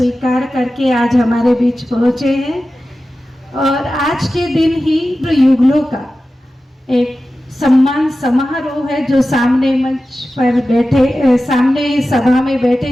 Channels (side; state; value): both; normal; correlation 0.94